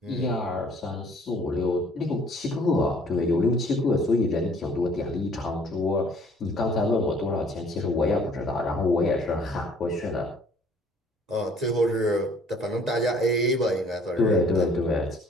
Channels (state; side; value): normal; both; correlation 0.57